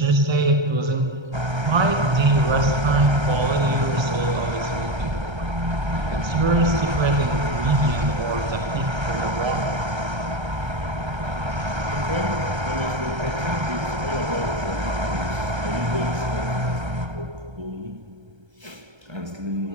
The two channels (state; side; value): late; left; 1.3 ms